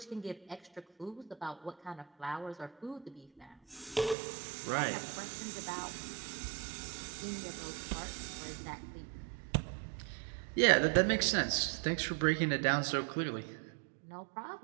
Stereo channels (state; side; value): drops out; left; at 4.2 s